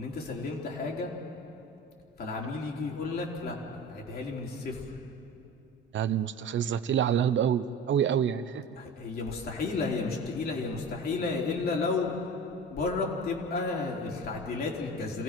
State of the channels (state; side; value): normal; both; correlation 0.34